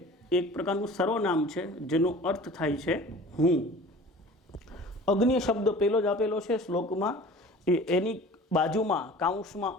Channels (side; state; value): both; normal; correlation 0.43